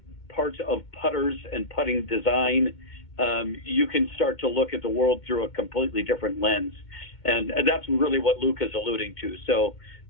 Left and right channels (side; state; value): right; late; 2.2 ms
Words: parts of putters and putting design, you can start to look at the world through a completely different lens. And that's really what Luke is alluding to. So